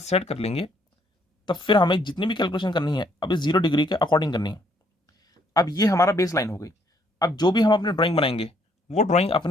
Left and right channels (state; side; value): normal; both; correlation 0.68